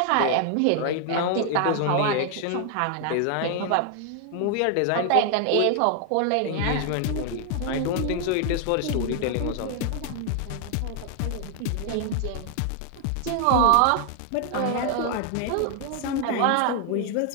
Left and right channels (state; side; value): different; both; correlation 0.00